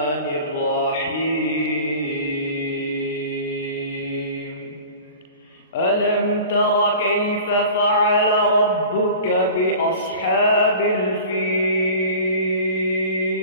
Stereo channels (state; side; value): inverted; both; correlation -0.40